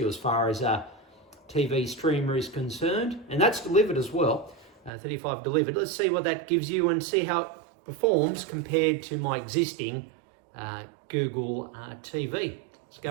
as far as a TV streamer is concerned. And that's delivered as well, $35 delivered. Let's see what that gives you and see how it performs compared to my existing Google TV. Let's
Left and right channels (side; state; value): left; drops out; at 4.9 s